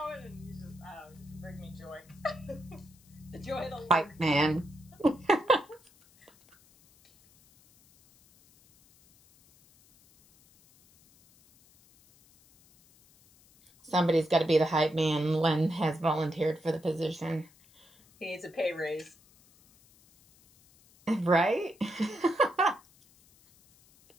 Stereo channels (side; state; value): left; noise; hiss, 29 dB below the sound